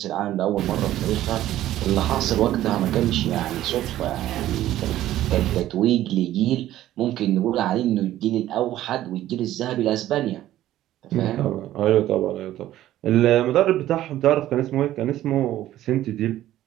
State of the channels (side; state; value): left; quieter; 13.7 dB